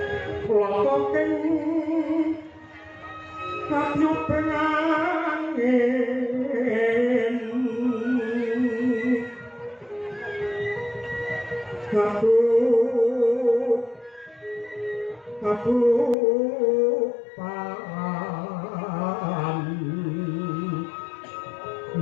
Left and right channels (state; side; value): drops out; right; at 16.2 s